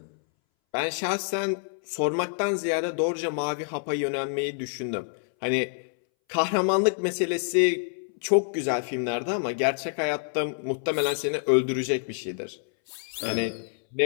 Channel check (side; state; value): right; silent; 60 dB below the other